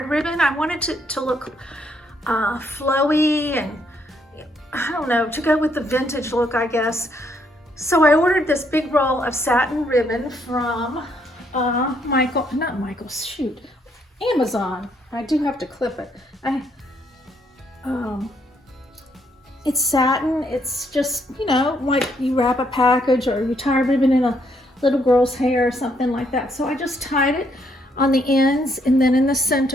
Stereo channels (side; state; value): both; normal; correlation 0.72